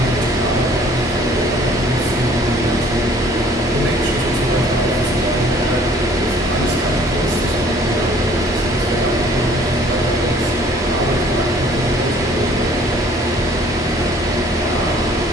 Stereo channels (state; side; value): normal; both; correlation 0.56